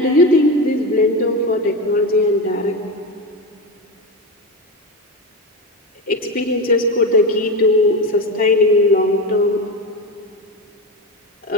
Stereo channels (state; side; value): normal; both; correlation 0.19